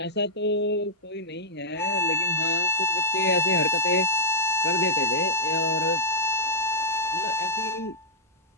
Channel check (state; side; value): normal; both; correlation -0.09